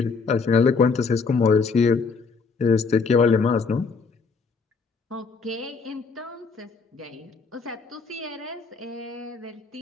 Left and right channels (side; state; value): right; quieter; 4.8 dB